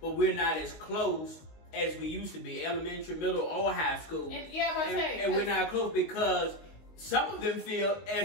we're not as close as we used to be, elementary, middle, or high school. And we're not close because some of them feel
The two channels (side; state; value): right; late; 19 ms